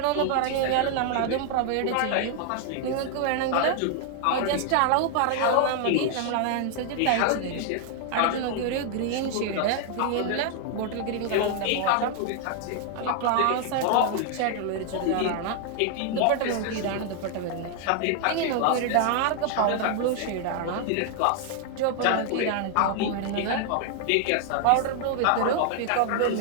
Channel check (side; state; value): both; different; correlation 0.00